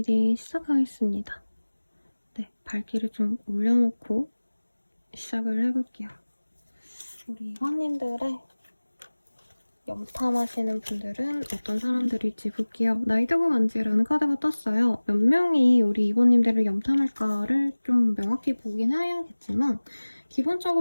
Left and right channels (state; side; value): inverted; both; correlation -1.00